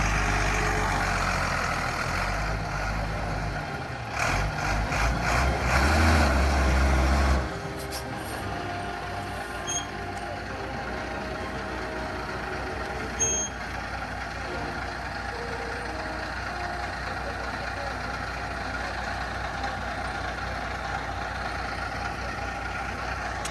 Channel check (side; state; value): both; identical; correlation 1.00